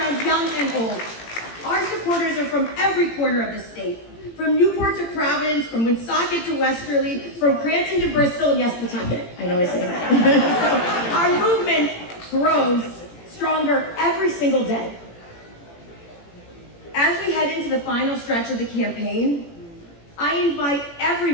young and old. Our supporters are from every corner of the state, from Newport to Providence, from Woonsocket to Westerly, from Cranston to Bristol, and yes, Pawtucket. I know I say that. So our movement grows stronger every single day. As we head into the final stretch of the campaign, I invite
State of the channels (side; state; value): right; late; 18 ms